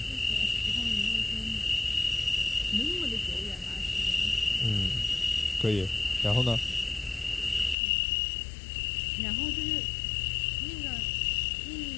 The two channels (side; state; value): right; drops out; at 7.8 s